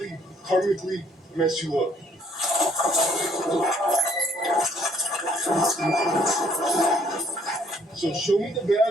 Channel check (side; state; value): both; normal; correlation 0.64